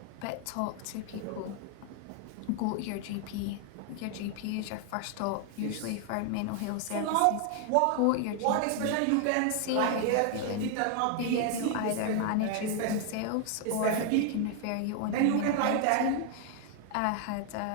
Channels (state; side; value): different; both; correlation 0.00